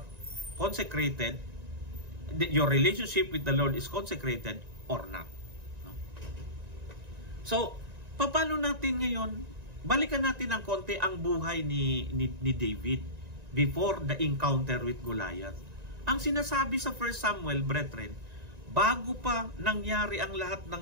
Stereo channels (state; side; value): late; left; 1.9 ms